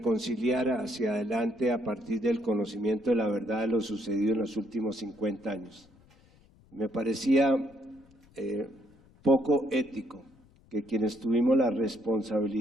hacia adelante a partir del conocimiento de la verdad de lo sucedido en los últimos 50 años. Me parecía poco ético que quienes tuvimos la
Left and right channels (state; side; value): noise; left; rumble, 28 dB below the sound